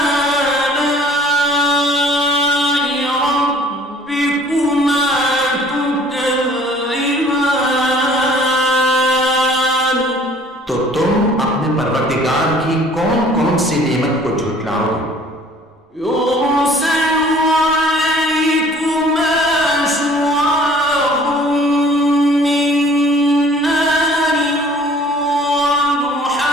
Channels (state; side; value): normal; both; correlation 0.53